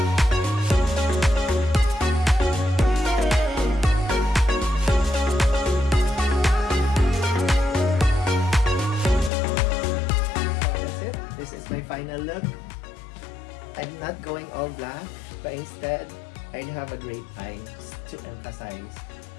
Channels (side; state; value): right; drops out; at 9.3 s